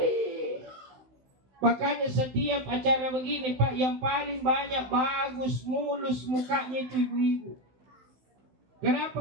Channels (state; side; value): late; left; 16 ms